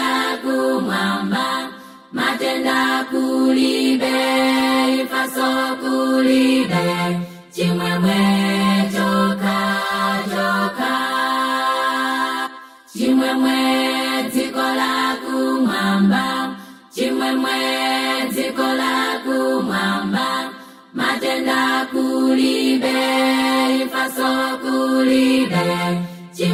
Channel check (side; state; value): both; identical; correlation 1.00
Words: kumwamba, matenda kulibe, ifaso kulibe, chimwemwe choka choka. Chimwemwe dziko la kumwamba, chimwemwe dziko la kumwamba, matenda kulibe, ifaso kulibe,